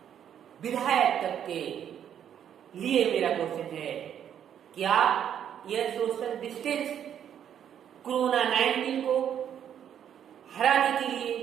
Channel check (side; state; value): left; quieter; 9.3 dB